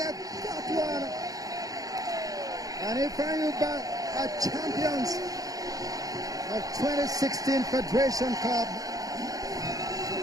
that one. And Ifeanyi are champions of 2016 Federation Cup.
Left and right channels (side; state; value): left; late; 0.17 ms